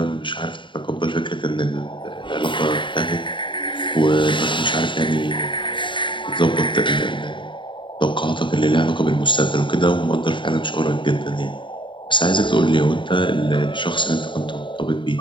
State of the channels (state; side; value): late; right; 0.23 ms